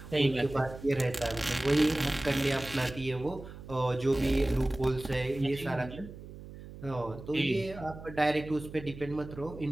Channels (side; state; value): right; noise; hum, 14 dB below the sound